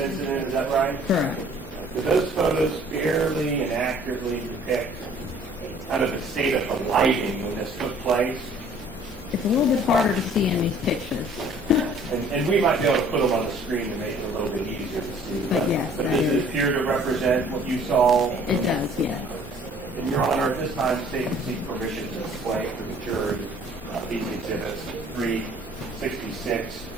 is that right? Correct. Do those photos fairly and accurately depict kind of the state of the lighting when this took place? It's a little bit harder to see in these pictures. And we might be able to put them on the screen to make it a little bit easier to see. But yes, But that does it is- appear to represent what you saw? It does, yes. In Your Honor, at this time, state and seek permission to display for the jury these exhibits 366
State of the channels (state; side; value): normal; both; correlation 0.55